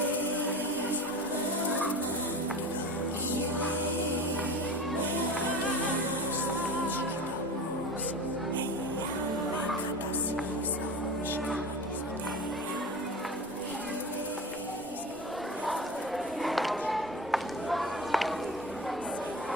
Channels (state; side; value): noise; right; rumble, 22 dB below the sound